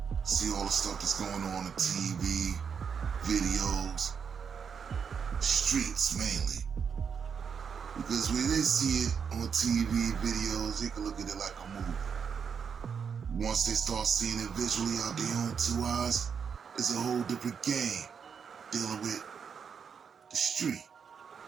see all the stuff that's going on TV, videos, streets mainly. Because when they see it on TV, videos, they can look at it like a movie. Once they start seeing it visually out their own two eyes, it's a whole different game dealing with the street.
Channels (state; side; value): quieter; left; 6.7 dB